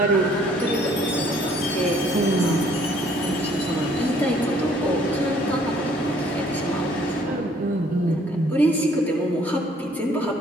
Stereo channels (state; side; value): normal; both; correlation 0.61